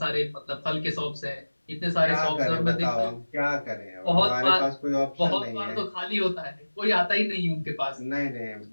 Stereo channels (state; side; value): inverted; both; correlation -1.00